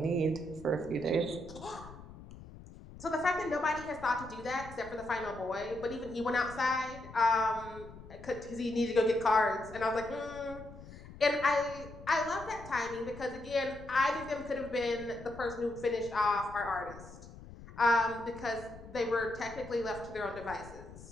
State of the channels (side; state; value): left; noise; rumble, 16 dB below the sound